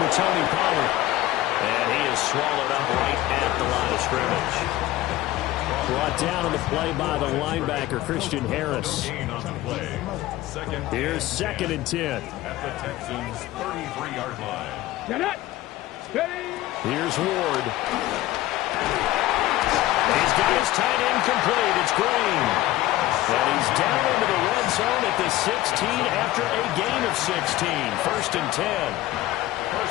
with Tony Pollard. And he is swallowed up right at the line of scrimmage. Brought down on the play by the linebacker, Christian Harris. Here's 2nd and 10. At the Texans' 33-yard line. Get it. Steady. Here's Ward. He's got his tight end complete. It's Green. And he's down into the red zone at the 16 after a gain of 16. 1st and 10.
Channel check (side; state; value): right; quieter; 16.1 dB